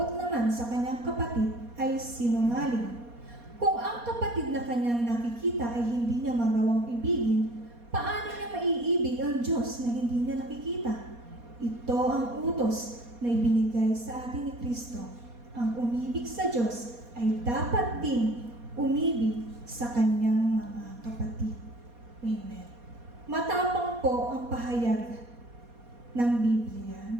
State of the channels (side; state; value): left; late; 4.2 ms